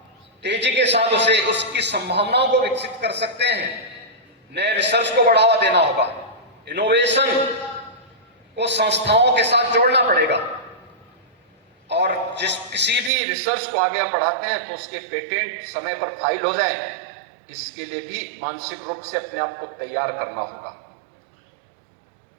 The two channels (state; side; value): drops out; left; at 13.1 s